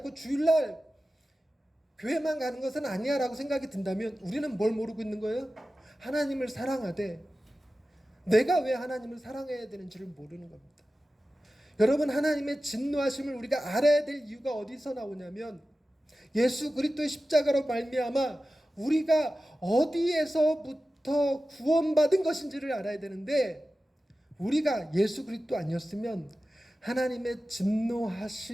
주일날 교회만 가는 것은 아니야 라고 생각이 든다면 우리는 뭘 모르고 있는 거예요? 하나님을 사랑하되 내가 왜 하나님을 사랑해야 되는지를 모르는 겁니다. 여러분, 하나님의 진노하심을 우리가 알아야 될 이유가 어디서 나오냐면 예수 그리스도의 십자가로 말미암아 우리가 어디에서부터 구원받은 것인지를 알아야 되는데, 우리가 예수 그리스도 아니었으면 하나님의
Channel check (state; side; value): normal; both; correlation 0.94